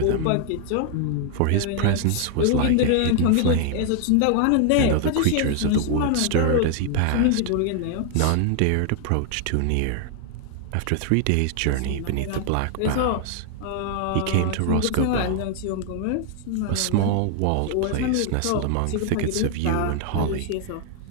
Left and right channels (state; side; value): different; both; correlation 0.00